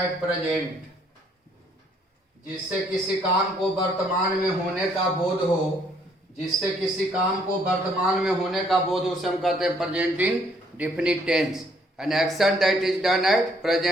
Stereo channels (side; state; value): both; normal; correlation 0.66